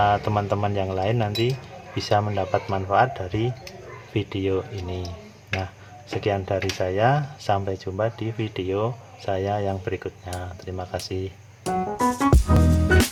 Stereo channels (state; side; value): identical; both; correlation 1.00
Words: teman-teman yang lain nanti bisa mendapat manfaat dari video ini. Nah, sekian dari saya, sampai jumpa di video saya yang berikutnya. Terima kasih.